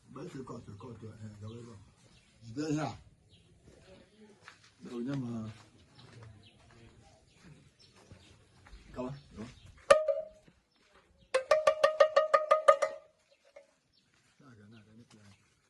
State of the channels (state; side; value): identical; both; correlation 1.00